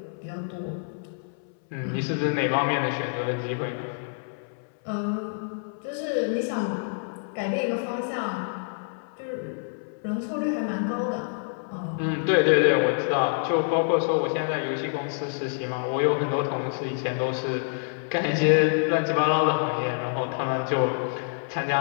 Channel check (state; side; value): silent; right; 60 dB below the other